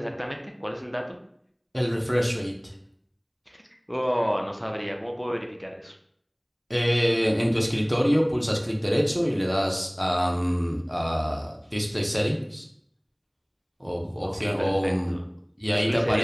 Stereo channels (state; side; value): identical; both; correlation 1.00